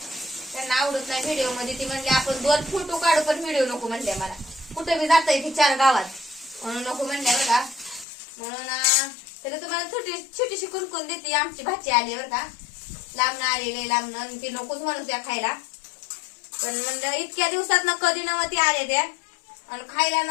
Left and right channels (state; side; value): drops out; right; at 8.1 s